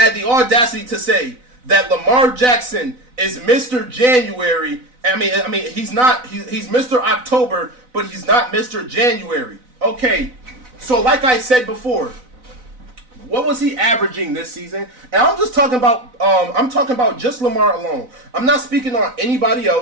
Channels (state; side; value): late; left; 4.0 ms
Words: the audacity to say that Lamar Jackson is Mr. January. I mean, he's not. He's Mr. October, but he's not Mr. January. Okay, so like I said before, what was he averaging this season? And I'm just talking about. I'm talking about just Lamar alone. I'm not speaking on anybody